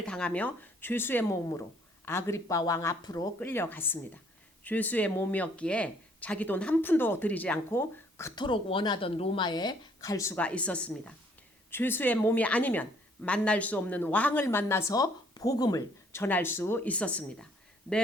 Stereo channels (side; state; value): both; normal; correlation 0.63